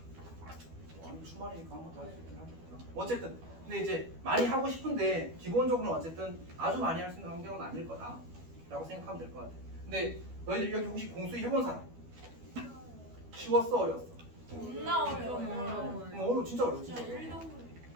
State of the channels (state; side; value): late; left; 12 ms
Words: 아니 주말이니까 한 번 더 할 수 있긴 하겠구나. 어쨌든 근데 이제 많이 하고 싶은데 기본적으로 어쨌든 아주 많이 할 수 있는 환경은 아닐 거다라고 생각하면 될 것 같아. 근데 너희들 여기 혹시 공수위 해본 사람? 쉬웠어 어려웠어? 존나 어려워요. 어려워 진짜 어려워 진짜 진짜 어려워. 1도